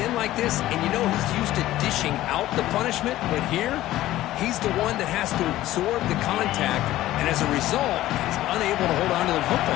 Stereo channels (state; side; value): quieter; right; 15.0 dB